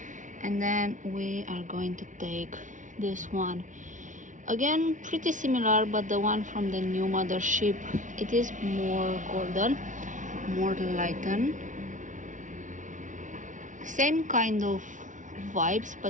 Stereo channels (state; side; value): late; left; 0.37 ms